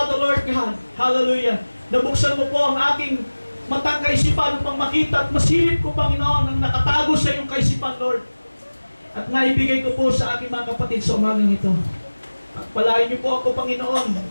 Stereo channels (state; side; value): inverted; both; correlation -1.00